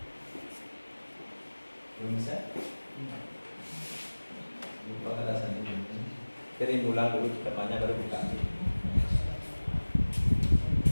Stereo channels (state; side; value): inverted; both; correlation -1.00